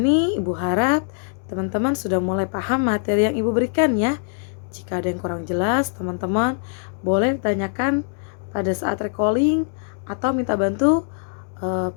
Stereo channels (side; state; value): right; silent; 64 dB below the other